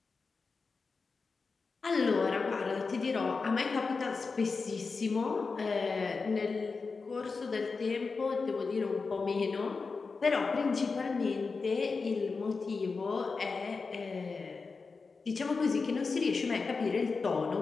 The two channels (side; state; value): right; quieter; 4.5 dB